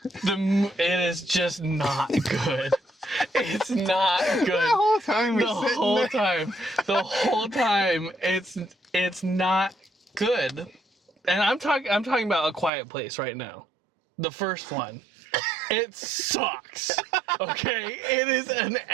It is just not good. It's not good. The whole time The whole time, it's not good. And I'm talking about A Quiet Place right now. The first one. It sucks. Okay? It is an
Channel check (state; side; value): drops out; left; at 12.7 s